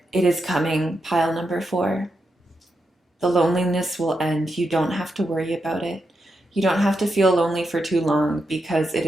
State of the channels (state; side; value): normal; both; correlation 0.85